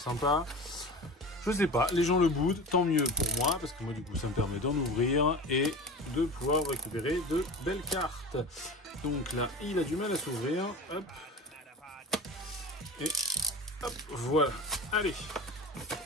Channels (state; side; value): normal; both; correlation 0.31